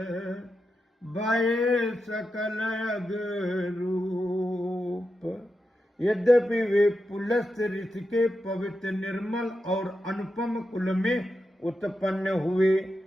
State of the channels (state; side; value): normal; both; correlation 0.88